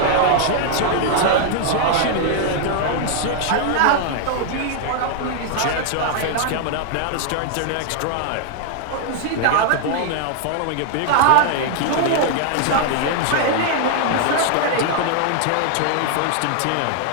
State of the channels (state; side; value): different; both; correlation 0.00